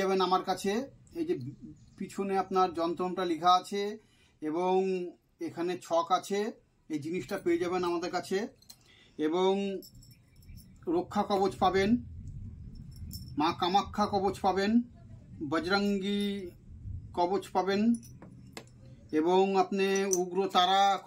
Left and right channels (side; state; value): both; identical; correlation 1.00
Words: যাবেন আমার কাছে। এই যে পিছনে আপনার যন্ত্রটা লেখা আছে এবং এখানে ছক আছে, এই জিনিসটা পেয়ে যাবেন আমাদের কাছে। এবং রক্ষা কবচ পাবেন, মা কামাখ্যা কবচ পাবেন, বজরঙ্গী কবচ পাবেন এবং আপনি উগ্রতারা